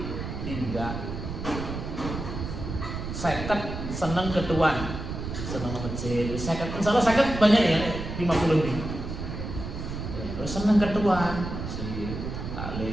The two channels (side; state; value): right; noise; rumble, 6 dB below the sound